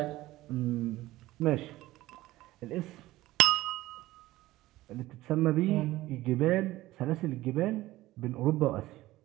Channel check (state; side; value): quieter; left; 17.1 dB